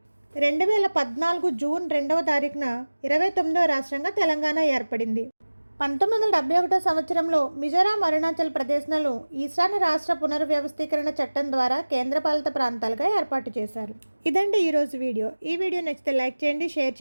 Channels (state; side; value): inverted; both; correlation -1.00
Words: 2014 జూన్ 2వ తారీఖున 29వ రాష్ట్రంగా తెలంగాణ ఏర్పడింది. 1971 సంవత్సరంలో మిజోరాం, అరుణాచల్ ప్రదేశ్లను ఈశాన్య రాష్ట్ర పునర్వ్యవస్థీకరణ చట్టం ద్వారా కేంద్రపాలిత ప్రాంతాలుగా ఏర్పాటు చేశారు. ఇదండి ఈరోజు వీడియో. ఈ వీడియో నచ్చితే లైక్ చేయండి, షేర్